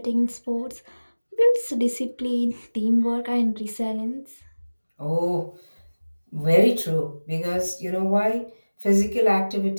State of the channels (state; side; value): inverted; both; correlation -1.00